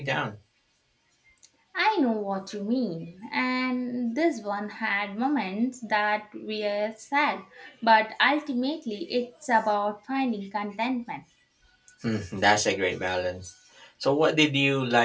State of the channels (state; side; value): identical; both; correlation 1.00